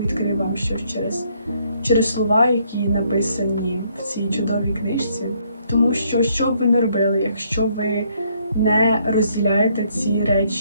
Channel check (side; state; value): both; inverted; correlation -0.69